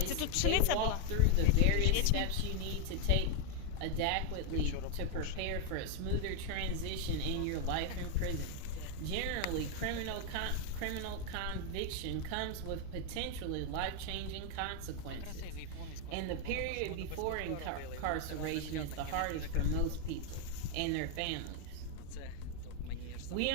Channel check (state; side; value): different; both; correlation 0.00